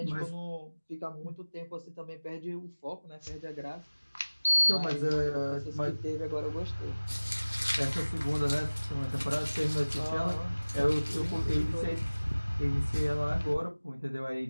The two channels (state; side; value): inverted; both; correlation -1.00